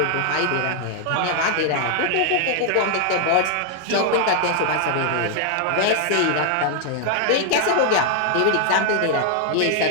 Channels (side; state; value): both; different; correlation 0.00